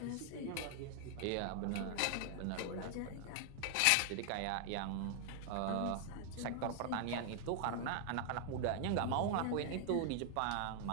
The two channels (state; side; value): different; both; correlation 0.00